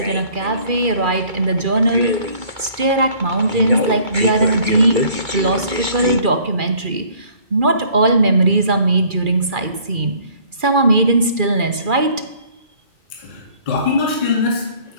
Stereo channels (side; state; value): left; late; 2.4 ms